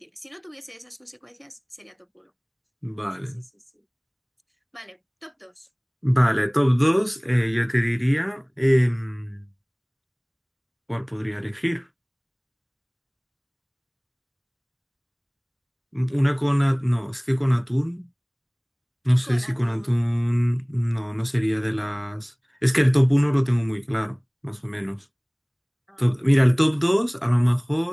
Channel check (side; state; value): both; identical; correlation 1.00